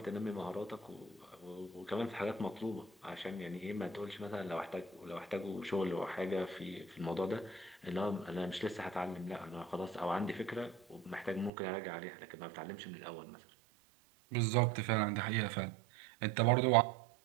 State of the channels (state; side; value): drops out; left; at 11.5 s